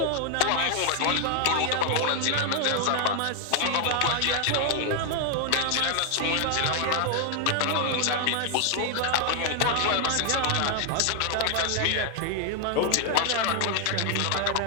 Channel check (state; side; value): different; both; correlation 0.00